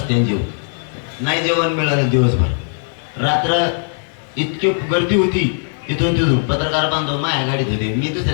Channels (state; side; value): silent; right; 67 dB below the other